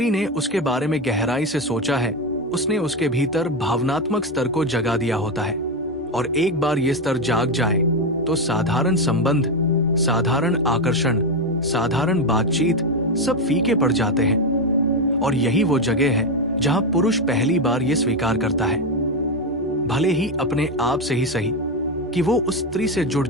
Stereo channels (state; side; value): normal; both; correlation 0.10